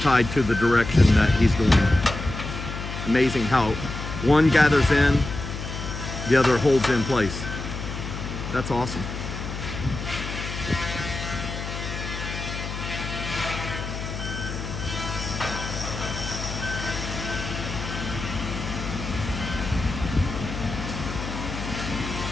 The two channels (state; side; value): noise; left; hum, 7 dB below the sound